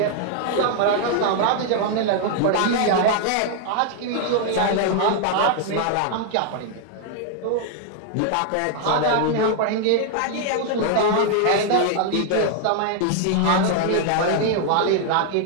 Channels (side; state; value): both; different; correlation 0.00